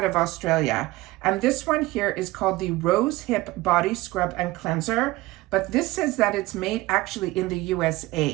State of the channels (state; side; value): quieter; left; 19.3 dB